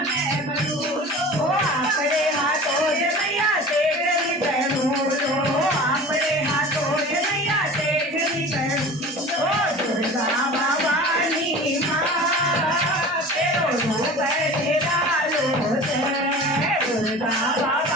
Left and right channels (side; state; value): both; normal; correlation 0.38